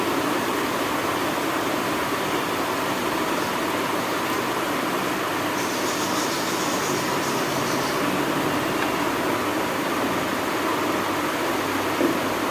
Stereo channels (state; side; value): identical; both; correlation 1.00